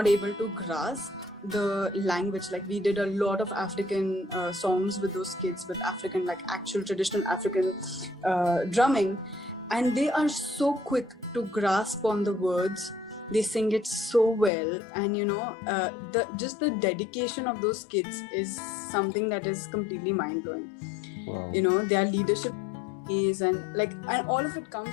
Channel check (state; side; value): drops out; right; at 14.5 s